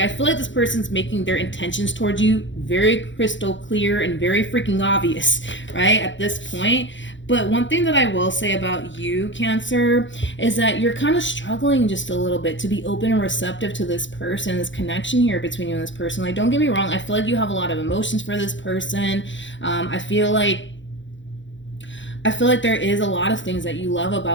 feel like this person's making their intentions towards you very crystal clear and very freaking obvious, right, at this point. But one thing that I will say about you, Cancer, is that you're kind of struggling just a little bit to be open and receptive to this person, this connection here between you and this person. Like, don't get me wrong, I feel like you have a lot of emotions for this person. I feel like there is a lot of things that you love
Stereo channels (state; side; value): late; right; 0.54 ms